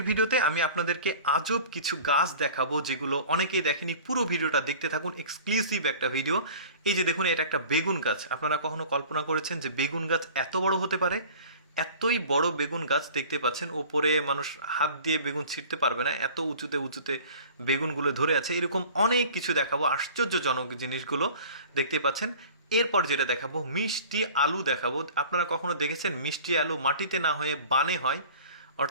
ভিডিওতে আমি আপনাদেরকে আজব কিছু গাছ দেখাবো যেগুলো অনেকেই দেখেনি। পুরো ভিডিওটা দেখতে থাকুন, এক্সক্লুসিভ একটা ভিডিও। এই যে দেখুন, এটা একটা বেগুন গাছ। আপনারা কখনো কল্পনা করেছেন যে বেগুন গাছ এত বড় হতে পারে? এতই বড় বেগুন গাছ দেখতে পাচ্ছেন, ওপরে মানুষ হাত দিয়ে বেগুন ছিঁড়তে পারবে না, এত উঁচুতে উঁচুতে বেগুনগুলো ধরে আছে। এরকম অনেক কিছু দেখাবো, আশ্চর্যজনক জিনিসগুলো দেখতে পাচ্ছেন। এরপর যেটা দেখাবো, মিষ্টি আলু দেখাবো। আপনারা কখনো দেখেছেন মিষ্টি আলু মাটিতে না হয়ে বানে হয়?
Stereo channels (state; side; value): inverted; both; correlation -0.43